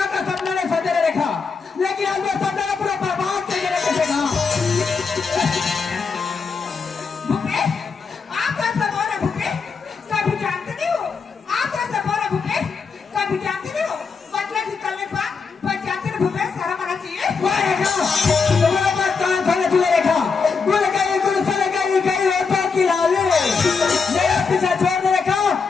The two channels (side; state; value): right; quieter; 5.2 dB